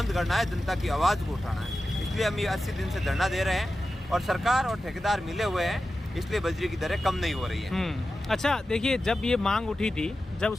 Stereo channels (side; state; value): both; normal; correlation 0.93